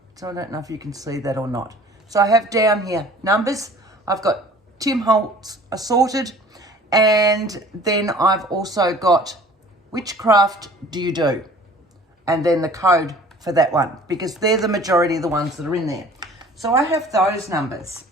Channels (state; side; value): normal; both; correlation 0.49